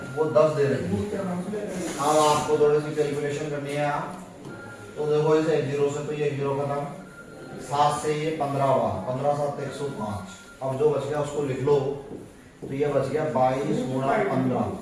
वो 10 दे रही है। अब आपको थोड़ी सी कैलकुलेशन करनी है। तो देखो इसे 1 0 से, तो ये 1 0 खत्म, 7 से ये 15 हुआ, 15 7 105। अब जो बच गया उसको लिख लो। तो ये बच गया 22 गुणा 15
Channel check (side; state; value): both; identical; correlation 1.00